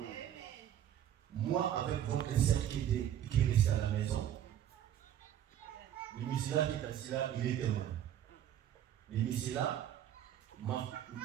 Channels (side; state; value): left; quieter; 10.7 dB